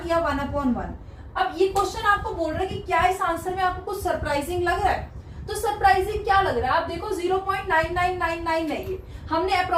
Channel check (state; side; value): identical; both; correlation 1.00